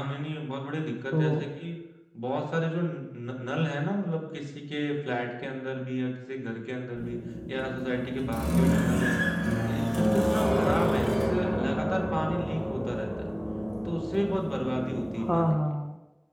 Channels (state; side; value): identical; both; correlation 1.00